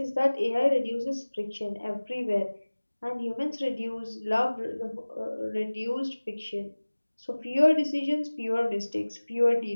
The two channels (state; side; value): inverted; both; correlation -1.00